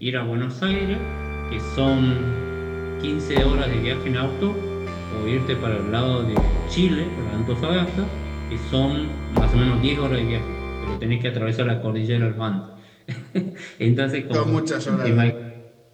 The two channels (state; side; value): identical; both; correlation 1.00